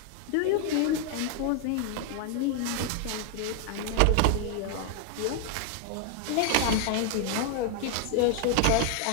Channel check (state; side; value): different; both; correlation 0.00